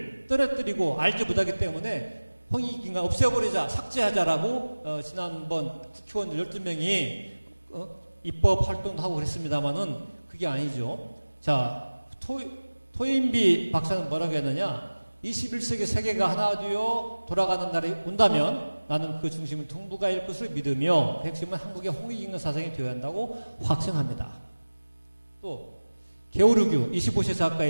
떨어뜨리고 알지 못하기 때문에 홍익인간 없애버리자, 삭제하자라고 지난번 국회의원들 12명이 입법 활동도 하고 그랬습니다만은 그게 아니죠. 자, 토인비 박사는 뭐라고 했느냐? 21세기 세계가 하나 되어 돌아가는 날이 온다면 나는 그 중심은 동북아일 것을 믿으며 그 핵심은 한국의 홍익인간 사상이 되어야 한다고 확신합니다. 또 게오르규 25세 작가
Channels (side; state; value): both; inverted; correlation -1.00